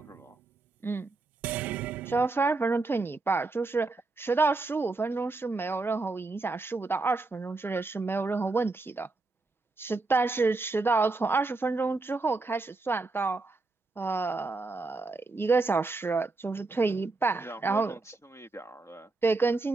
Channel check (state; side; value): quieter; left; 3.5 dB